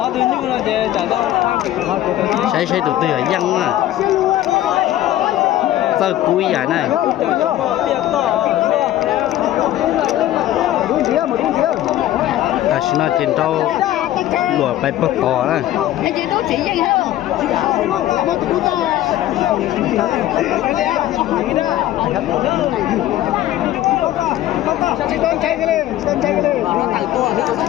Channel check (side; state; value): right; quieter; 13.6 dB